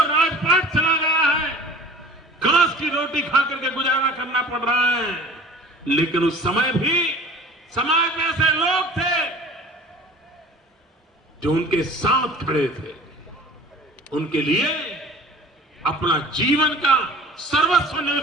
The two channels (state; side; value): normal; both; correlation 0.44